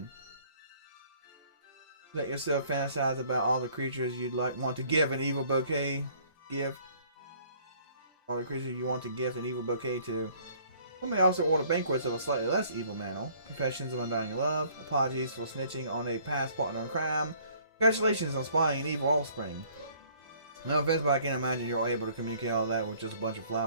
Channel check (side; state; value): both; inverted; correlation -0.58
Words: Let yourself fantasize about all the creatures you'd want to give an evil bouquet. All the creatures you want to gift an evil bouquet to. One may also order banquets of a slightly less evil manner. Confessions of undying love. Apologies for snitching on a past partner in crime. Congratulations on spying an evil offspring. No offense, but I can't imagine you're able to communicate all that with just a bunch of